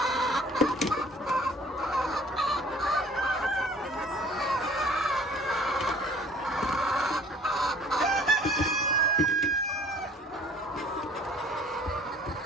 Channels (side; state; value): both; normal; correlation 0.53